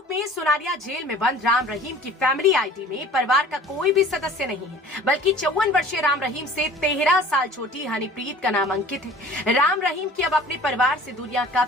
में सुनारिया जेल में बंद राम रहीम की फैमिली आईडी में परिवार का कोई भी सदस्य नहीं है, बल्कि 54 वर्षीय राम रहीम से 13 साल छोटी हनीप्रीत का नाम अंकित है। राम रहीम की अब अपने परिवार से दूरियां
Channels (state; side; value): normal; both; correlation 0.46